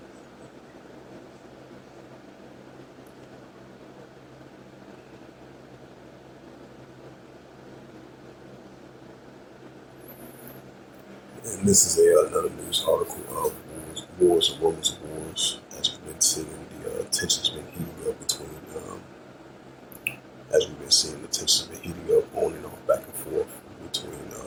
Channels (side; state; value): both; identical; correlation 1.00